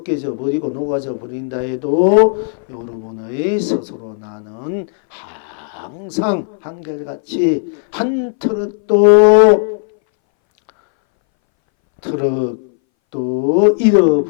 버리고 녹아져 버린다 해도 여러분의 스스로 나는 항상 한결같이 한 트럭도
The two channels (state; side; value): silent; right; 63 dB below the other